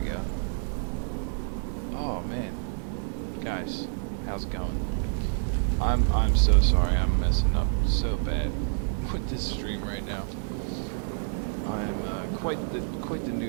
we go. Oh man, guys, how's it going? I'm so sorry. I'm messing up so bad with this stream right now. I'm quite the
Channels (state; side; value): silent; left; digital silence